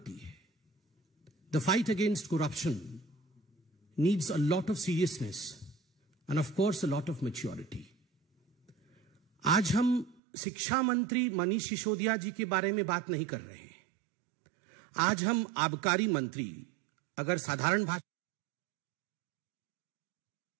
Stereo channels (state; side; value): drops out; left; at 10.2 s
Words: है। The fight against corruption needs a lot of seriousness end of course a lot of maturity. आज हम शिक्षा मंत्री मनीष सिसोदिया जी के बारे में बात नहीं कर रहे हैं। आज हम आबकारी मंत्री, अगर साधारण भाषा